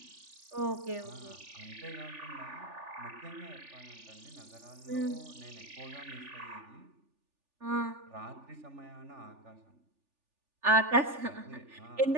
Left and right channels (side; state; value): left; late; 3.4 ms